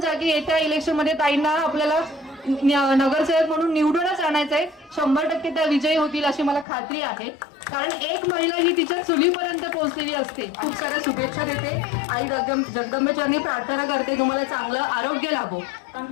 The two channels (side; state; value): right; drops out; at 6.7 s